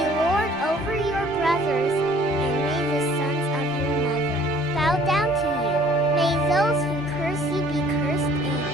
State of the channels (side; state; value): both; normal; correlation 0.55